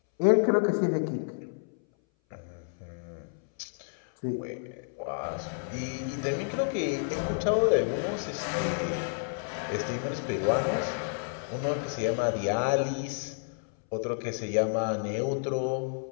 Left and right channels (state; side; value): silent; right; 58 dB below the other